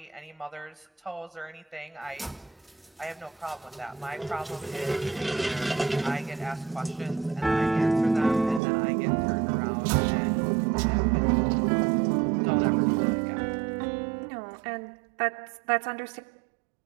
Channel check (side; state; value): left; drops out; at 8.6 s